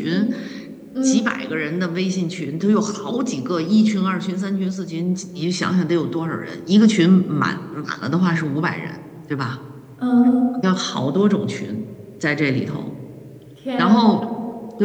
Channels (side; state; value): both; identical; correlation 1.00